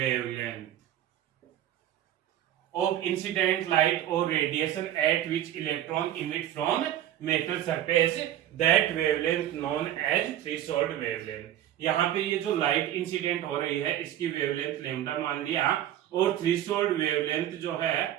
of incident light or radiation at which electron emit from metal surface, that wavelength known as threshold wavelength। यहाँ पे ये जो लाइट इंसिडेंट हो रही है इसकी वेवलेंथ लेमडा मान लिया, और थ्रेशोल्ड वेवलेंथ जो है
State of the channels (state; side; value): quieter; left; 12.0 dB